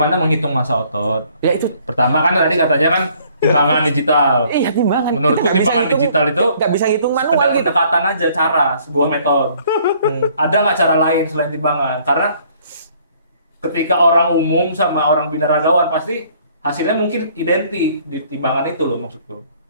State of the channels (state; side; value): inverted; both; correlation -0.61